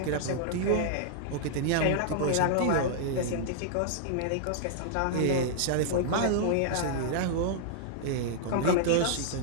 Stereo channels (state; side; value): different; both; correlation -0.01